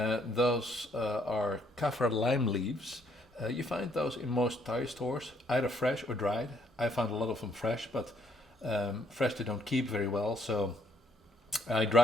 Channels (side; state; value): both; normal; correlation 0.68